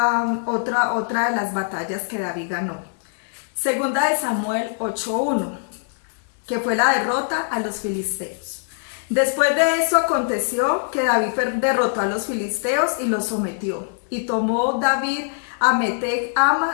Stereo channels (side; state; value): right; silent; digital silence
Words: de las batallas que David ganó. 2 de Samuel 8:1. Que fue la derrota a los filisteos. Después de eso aconteció que David derrotó a los filisteos y los sometió, y tomó David a Meteg